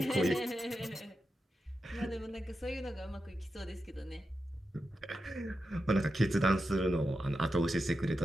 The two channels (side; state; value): both; normal; correlation 0.89